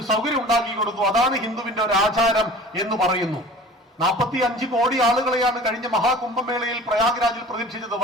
സൗകര്യം ഉണ്ടാക്കി കൊടുത്തു. അതാണ് ഹിന്ദുവിന്റെ ഒരു ആചാരം എന്ന് പറയുന്നു. 45 കോടി ആളുകളെയാണ് കഴിഞ്ഞ മഹാകുംഭമേളയിൽ പ്രയാഗ്രാജിൽ പ്രതീക്ഷിച്ചത്.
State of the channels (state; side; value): normal; both; correlation 0.43